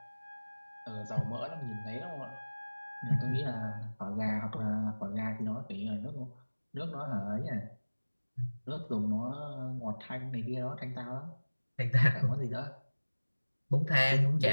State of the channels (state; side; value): inverted; both; correlation -1.00